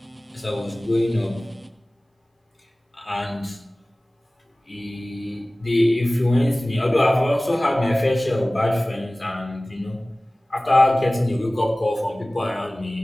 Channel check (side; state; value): both; normal; correlation 0.98